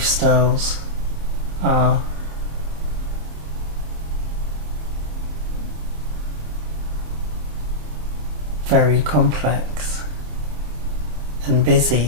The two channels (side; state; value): left; late; 27 ms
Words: are very complex, and